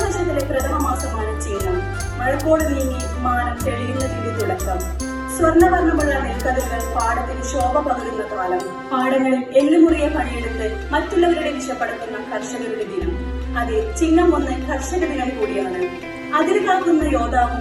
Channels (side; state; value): both; identical; correlation 1.00